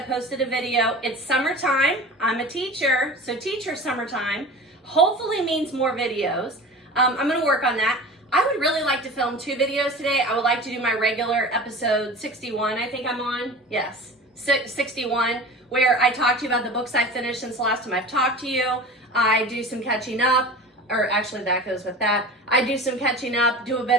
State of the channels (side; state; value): both; normal; correlation 0.35